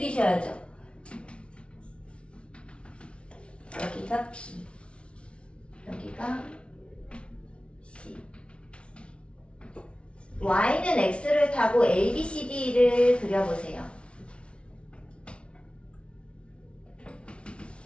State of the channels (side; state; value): right; late; 0.059 ms